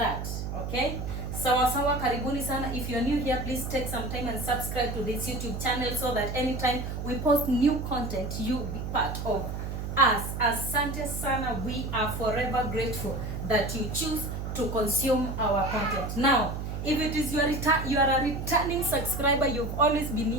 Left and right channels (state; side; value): noise; right; hum, 5 dB below the sound